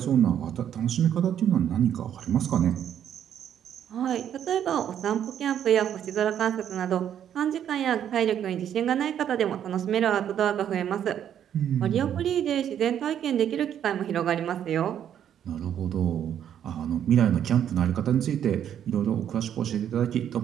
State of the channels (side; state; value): left; quieter; 9.7 dB